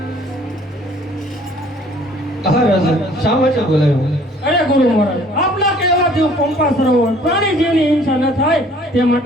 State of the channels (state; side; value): normal; both; correlation 0.56